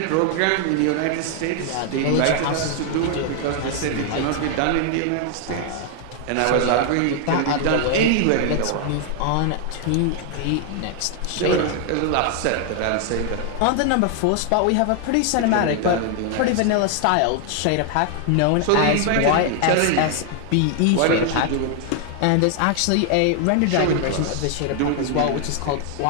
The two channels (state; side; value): different; both; correlation 0.00